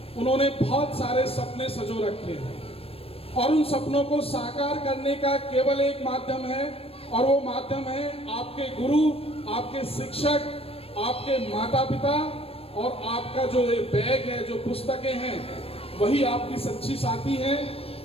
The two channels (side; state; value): right; late; 0.28 ms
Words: उन्होंने बहुत सारे सपने संजो रखे हैं और उन सपनों को साकार करने का केवल एक माध्यम है और वो माध्यम है आपके गुरु, आपके शिक्षक, आपके माता पिता और आपका जो बैग है, जो पुस्तकें हैं, वही आपकी सच्ची साथी हैं।